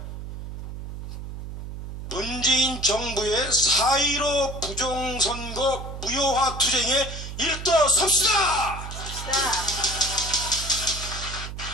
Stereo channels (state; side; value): noise; right; hum, 9 dB below the sound